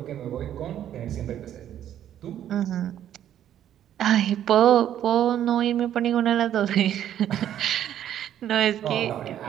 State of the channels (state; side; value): quieter; left; 10.9 dB